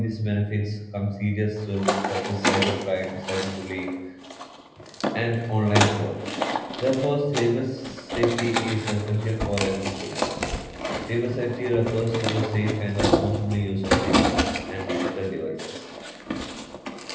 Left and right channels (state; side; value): identical; both; correlation 1.00